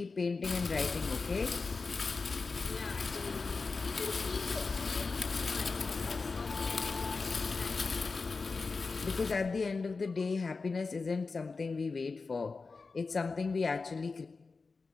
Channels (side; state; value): right; quieter; 4.2 dB